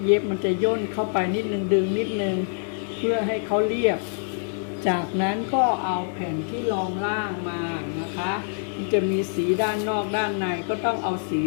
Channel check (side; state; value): right; silent; digital silence